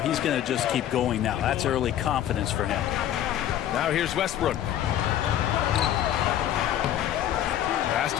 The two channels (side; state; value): right; quieter; 11.4 dB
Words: going to just keep going now. That's early confidence for him. Now here's Westbrook. Pass